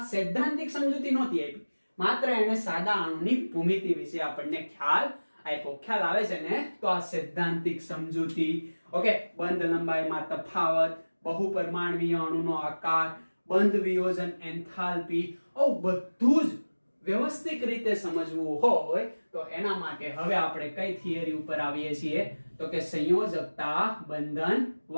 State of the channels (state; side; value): inverted; both; correlation -1.00